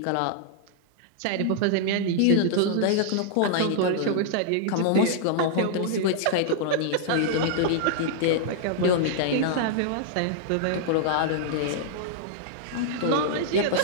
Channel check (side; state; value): both; different; correlation -0.01